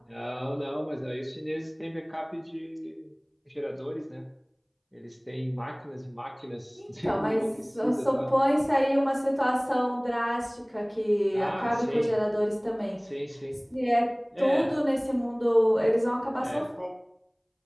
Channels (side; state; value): both; identical; correlation 1.00